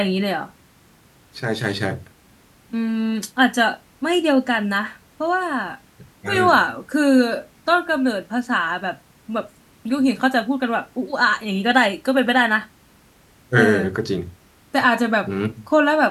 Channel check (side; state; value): both; identical; correlation 1.00